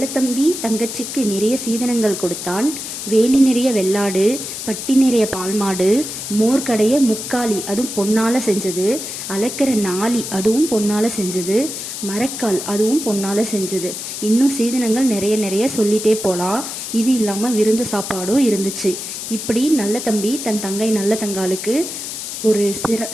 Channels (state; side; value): noise; left; hiss, 7 dB below the sound